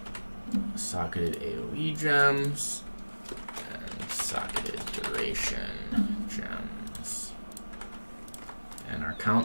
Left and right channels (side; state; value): both; inverted; correlation -1.00